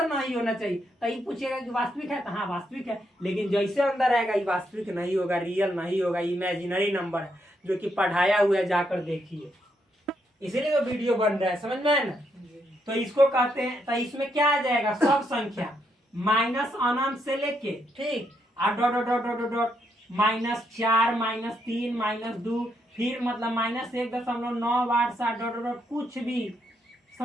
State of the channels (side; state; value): both; normal; correlation 0.77